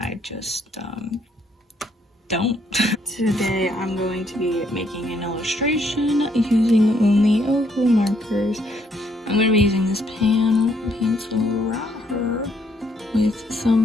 I just don't. Today, I'm going to be making an illustration using only Ohuhu markers. I'm going to be using this pencil right here with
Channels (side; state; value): both; normal; correlation 0.70